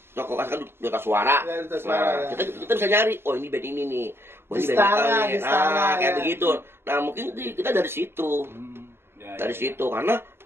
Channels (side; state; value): left; late; 0.11 ms